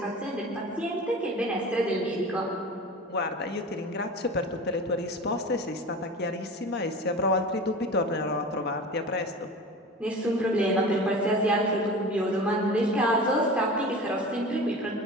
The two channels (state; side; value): normal; both; correlation 0.34